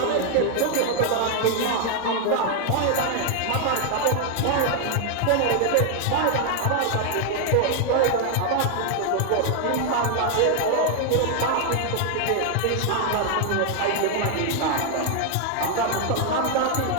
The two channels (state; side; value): different; both; correlation 0.00